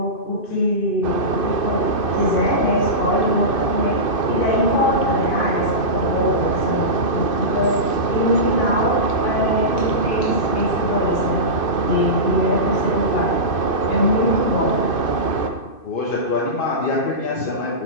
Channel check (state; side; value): late; right; 2.6 ms